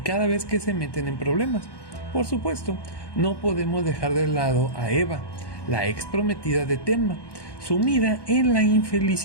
vez que se meten en problemas. Por supuesto, no podemos dejar de lado a Eva, la ex prometida de Tenma, sumida en la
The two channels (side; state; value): right; late; 1.1 ms